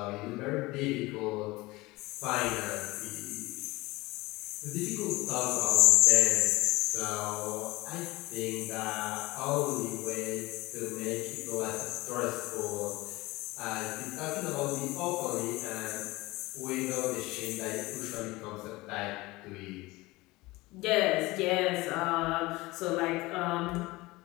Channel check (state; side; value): quieter; right; 21.0 dB